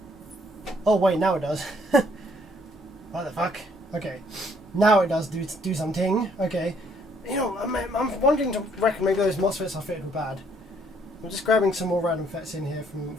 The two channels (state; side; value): normal; both; correlation 0.66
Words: Oh wait, now it does. What the fuck? Okay, now it does do something. Okay, you know, I'm wanting to reckon maybe those MOSFETs I fitted were bad. I'm just grabbing some more random FETs in here